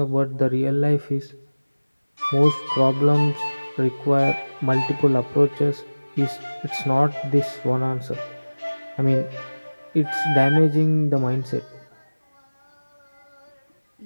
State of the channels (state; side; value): inverted; both; correlation -1.00